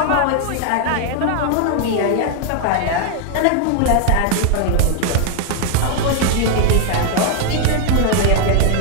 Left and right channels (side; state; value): both; different; correlation 0.00